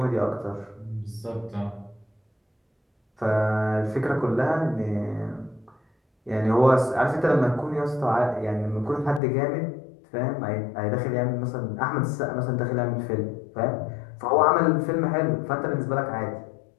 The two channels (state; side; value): drops out; right; at 9.2 s